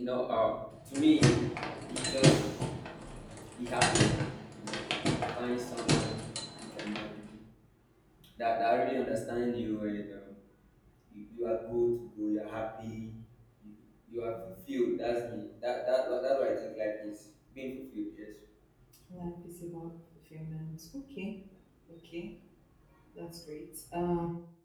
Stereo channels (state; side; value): identical; both; correlation 1.00